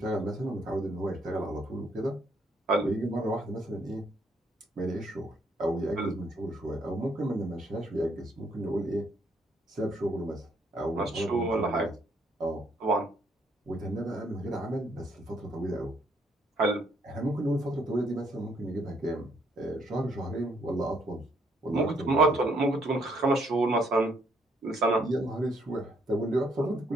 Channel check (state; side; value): normal; both; correlation 0.69